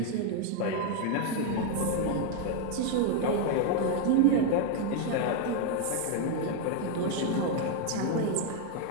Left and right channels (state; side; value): different; both; correlation 0.01